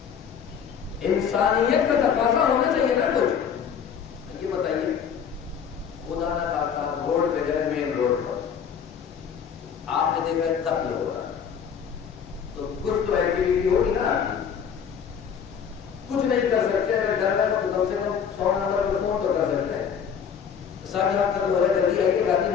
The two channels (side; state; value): right; quieter; 7.5 dB